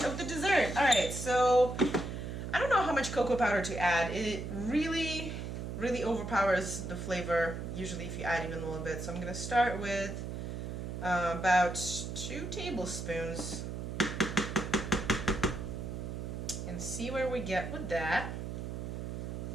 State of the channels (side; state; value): right; noise; hum, 6 dB below the sound